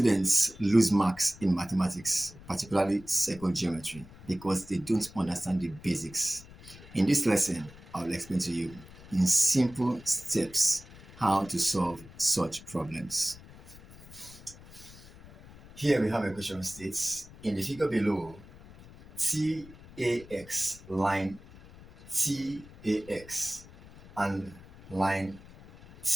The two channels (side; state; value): left; noise; rumble, 20 dB below the sound